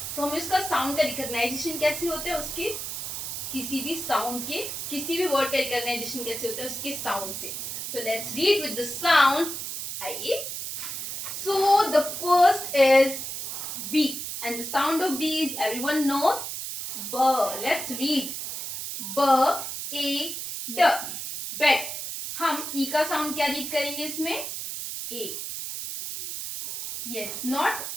तो हमें उसका साउंड का रिकॉग्नाइजेशन कैसे होता है, उसके किसी भी साउंड के, किसी भी वर्ड का रिकॉग्नाइजेशन कैसे होता है, उसके साउंड से. तो let's read with the sound. आइए. So the first is B, and the sound of B is, everyone knows, B. Let's read. B A D bed. हम E का साउंड क्या रीड करेंगे इसमें, A. Yes, not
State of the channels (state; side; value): noise; right; hiss, 5 dB below the sound